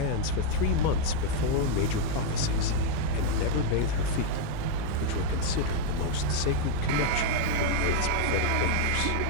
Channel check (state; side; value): different; both; correlation 0.00